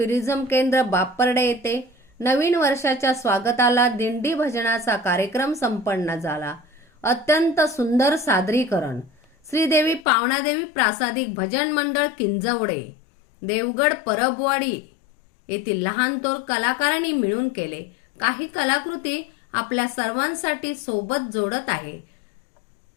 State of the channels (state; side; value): drops out; right; at 10.1 s